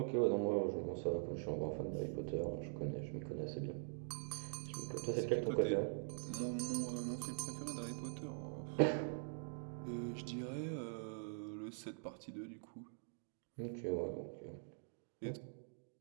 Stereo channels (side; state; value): left; silent; digital silence